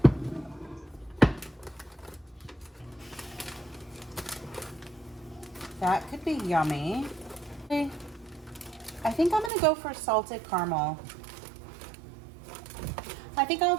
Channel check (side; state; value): left; drops out; at 9.5 s